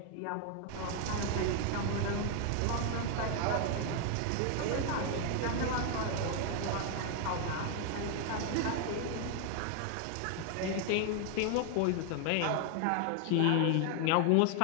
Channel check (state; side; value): different; both; correlation 0.00